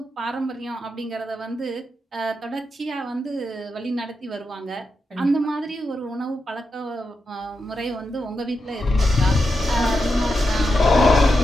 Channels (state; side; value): normal; both; correlation 0.87